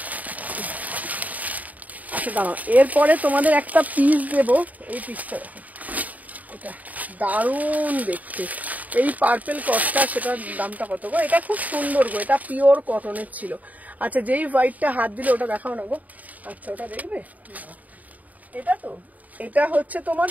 আচ্ছা দাঁড়াও, এরপরে তোমাদের একটা পিস দেবো। এই পিসটা দেখো, এটা দারুণ দেখতে, এই পার্পেল কটটা, সেটার দামটা কত গো? এটা খুব সুন্দর গো, এটা পিওর কটনের ছিল। আচ্ছা যেই হোয়াইটটা হাত দিলে ওটা দেখাও না গো। আচ্ছা ওটা দেখবে, এটা তো, এটা হচ্ছে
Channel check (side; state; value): left; late; 0.075 ms